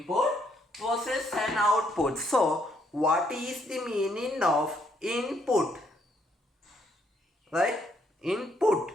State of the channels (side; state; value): both; normal; correlation 0.72